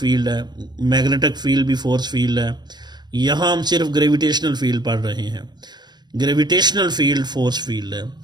है, मैग्नेटिक फील्ड भी फोर्स फील्ड है। यहाँ हम सिर्फ ग्रेविटेशनल फील्ड पढ़ रहे हैं। ग्रेविटेशनल फील्ड फोर्स फील्ड है।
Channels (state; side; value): late; left; 0.21 ms